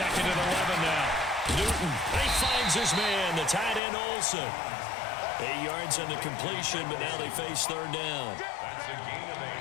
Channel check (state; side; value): drops out; right; at 3.8 s